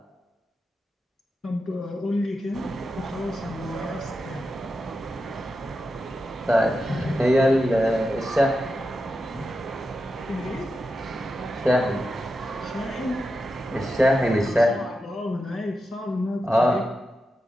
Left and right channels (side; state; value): both; normal; correlation 0.89